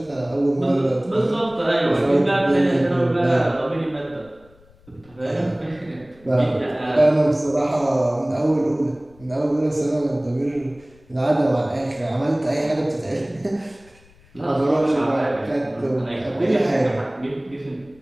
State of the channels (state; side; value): noise; left; rumble, 28 dB below the sound